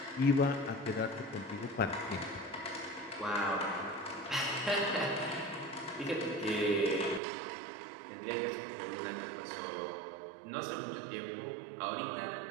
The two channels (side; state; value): left; drops out; at 7.2 s